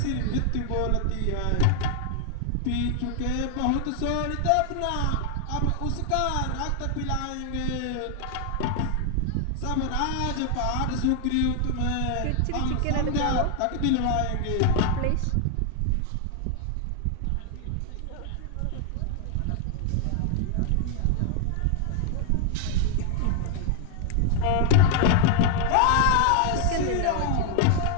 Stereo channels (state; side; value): different; both; correlation 0.00